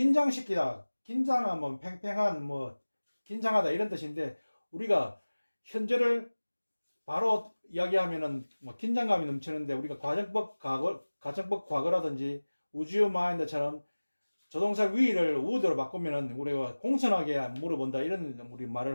긴장하면 팽팽한, 긴장하다 이런 뜻인데 우리가 현재를 바로 이야기하면은 긴장감이 넘치는데 우리가 가정법 과거라든지 would you mind처럼 조동사 would를 would로 바꾸면은 우리가 공손하게 물어본다 이런 우리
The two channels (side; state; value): both; inverted; correlation -1.00